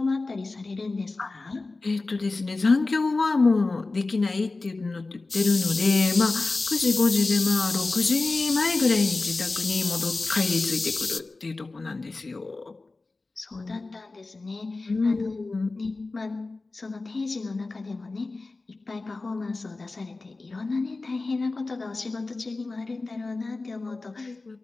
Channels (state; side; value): quieter; right; 3.5 dB